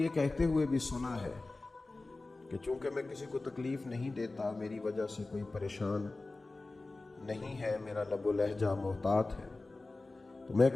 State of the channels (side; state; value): right; quieter; 3.2 dB